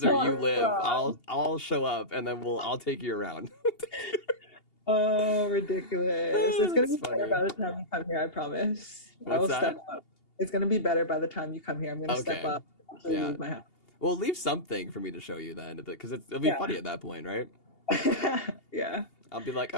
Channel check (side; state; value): right; late; 2.8 ms